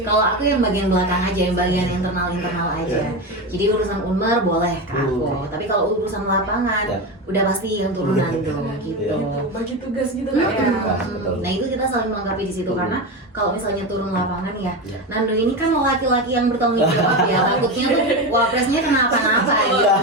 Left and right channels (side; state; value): both; normal; correlation 0.19